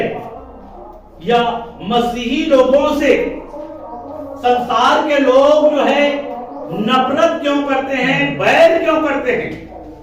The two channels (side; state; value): both; identical; correlation 1.00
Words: या मसीही लोगों से संसार के लोग जो है नफरत क्यों करते हैं, बैर क्यों करते हैं,